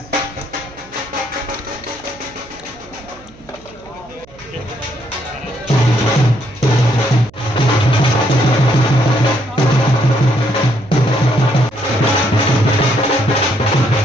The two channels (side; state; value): right; noise; hum, 24 dB below the sound